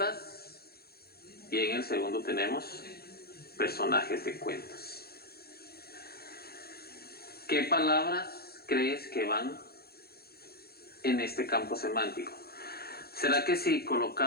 y en el segundo tenemos personajes de cuentos. ¿Qué palabras crees que van en este campo semántico? ¿Será que si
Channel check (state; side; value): late; right; 0.46 ms